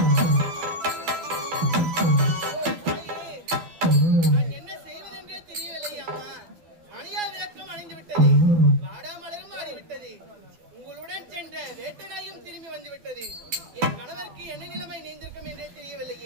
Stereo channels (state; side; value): late; left; 12 ms